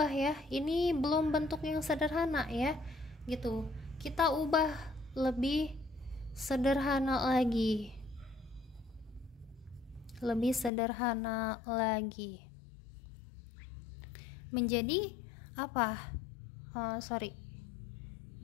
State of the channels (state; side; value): drops out; right; at 10.7 s